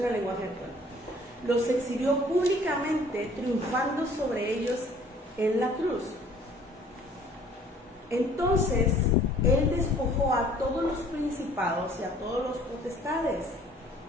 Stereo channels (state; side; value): normal; both; correlation 0.54